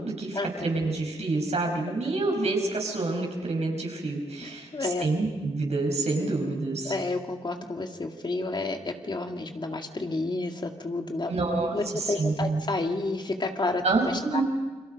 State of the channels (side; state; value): both; normal; correlation 0.70